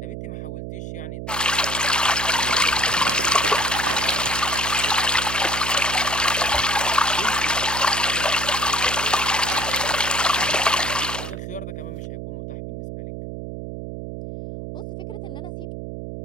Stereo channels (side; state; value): right; noise; hum, 8 dB below the sound